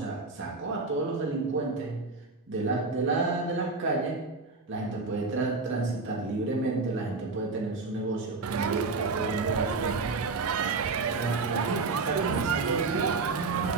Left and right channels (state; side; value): quieter; left; 3.9 dB